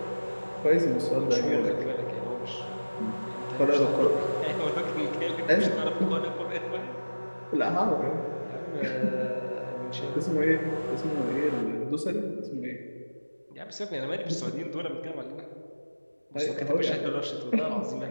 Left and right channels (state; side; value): inverted; both; correlation -1.00